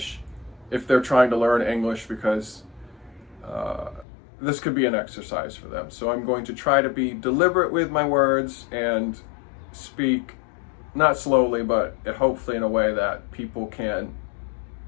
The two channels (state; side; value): drops out; right; at 4.0 s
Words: if they're trying to learn English, because uh, this could be an exercise for them. So I'm going to try to be deliberate with my words and speak not slowly, but hopefully in a way that people can